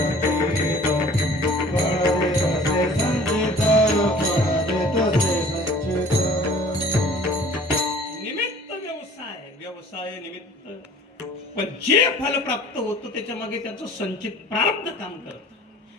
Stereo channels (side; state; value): both; normal; correlation 0.49